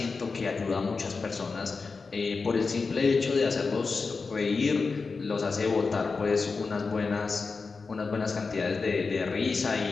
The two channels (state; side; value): quieter; right; 4.5 dB